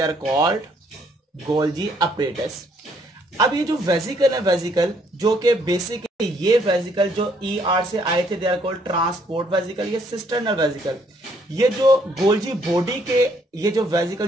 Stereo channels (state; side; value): normal; both; correlation 0.67